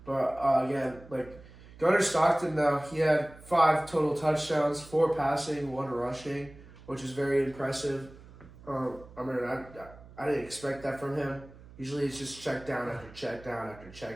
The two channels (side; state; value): right; noise; hum, 20 dB below the sound